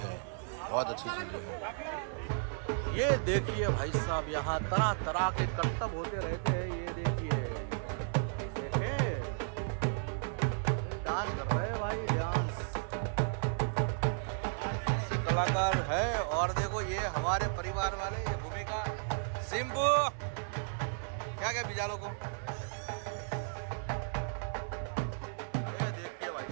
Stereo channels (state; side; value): silent; left; 55 dB below the other